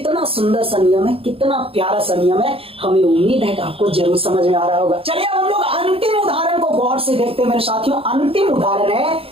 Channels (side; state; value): left; late; 0.27 ms